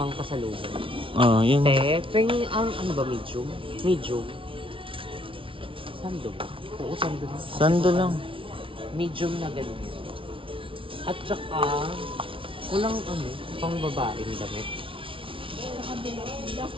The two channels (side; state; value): left; late; 0.25 ms